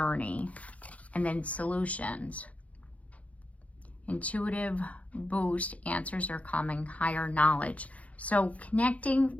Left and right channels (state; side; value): late; right; 0.067 ms